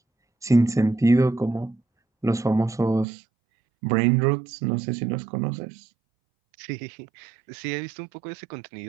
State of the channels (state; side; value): drops out; left; at 3.1 s